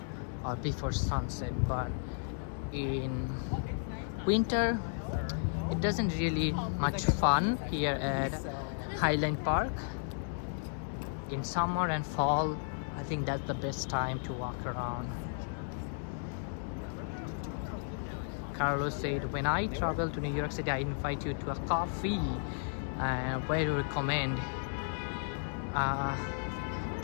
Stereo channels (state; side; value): silent; right; digital silence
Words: before sunset. But in winter it doesn't really much fun here at Highland Park. In summer and fall, I think that's the best time to walk around. Carlos said, when I travel to New York City, I invite you to a coffee. Where do you recommend?